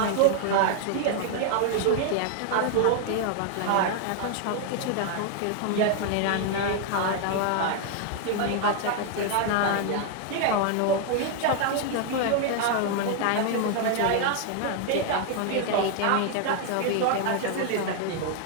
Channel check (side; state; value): both; different; correlation 0.00